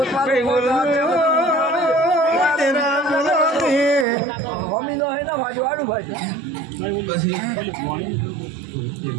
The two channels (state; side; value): drops out; left; at 4.0 s